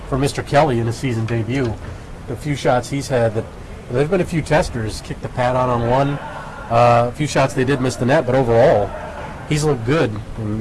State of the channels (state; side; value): identical; both; correlation 1.00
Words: for Mr. Kelly in his season debut. The few shots he's had, there's been a few testers, kicked the pad on one. A few shots they did miss the net, but overall, he's looked good, and